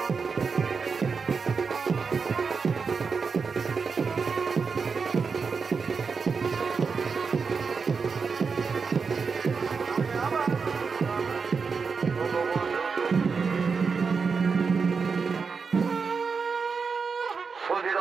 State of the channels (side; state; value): left; quieter; 5.2 dB